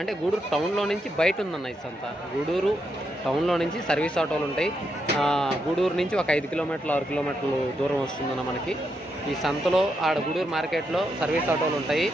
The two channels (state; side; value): normal; both; correlation 0.81